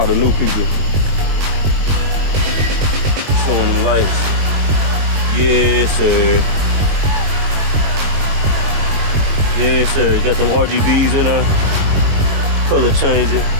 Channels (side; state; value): left; late; 21 ms